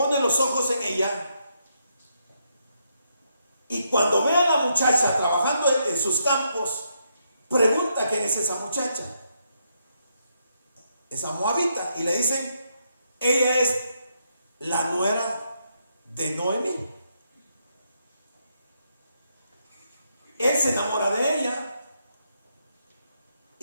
los ojos en ella Y cuando ve a la muchacha trabajando en sus campos, pregunta quién es esa muchacha. Esa moabita. Y le dicen, ella es la nuera de Noemí. Él se enamora de ella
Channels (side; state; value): both; inverted; correlation -0.78